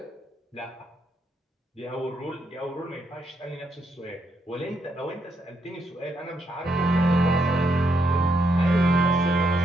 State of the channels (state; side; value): normal; both; correlation 0.78